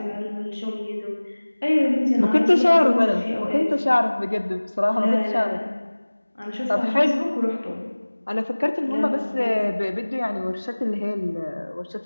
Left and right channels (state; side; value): inverted; both; correlation -1.00